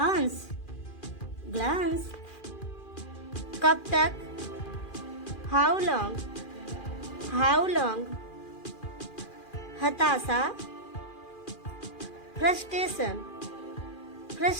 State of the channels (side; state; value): right; late; 2.4 ms